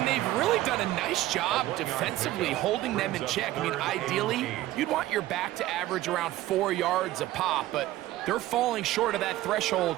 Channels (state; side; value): quieter; left; 15.5 dB